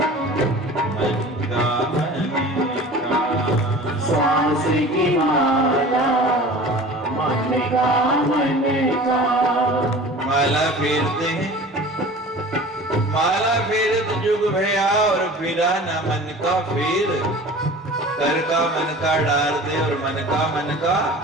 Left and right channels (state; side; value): normal; both; correlation 0.41